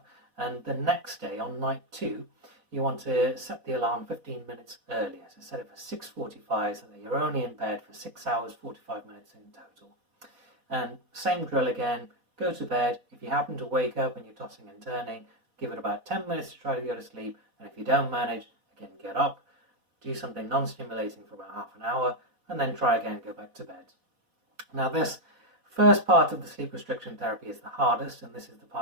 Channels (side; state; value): left; late; 4.1 ms